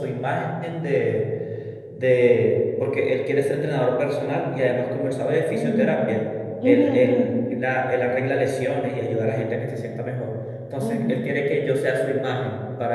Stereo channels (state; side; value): identical; both; correlation 1.00